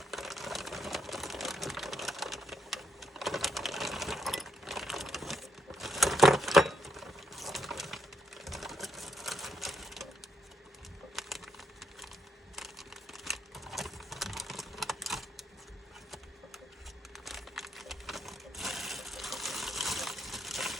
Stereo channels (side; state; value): both; normal; correlation 0.76